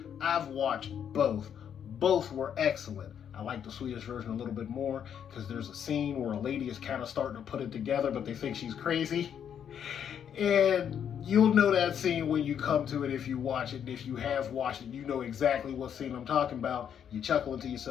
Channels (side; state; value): right; quieter; 8.6 dB